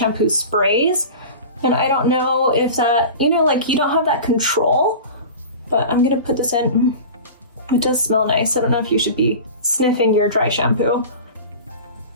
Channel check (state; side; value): inverted; both; correlation -0.34